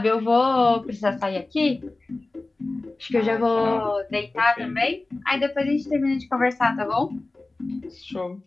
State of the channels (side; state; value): right; quieter; 3.1 dB